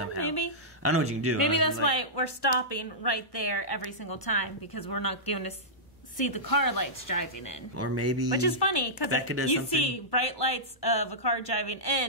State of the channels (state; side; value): normal; both; correlation -0.14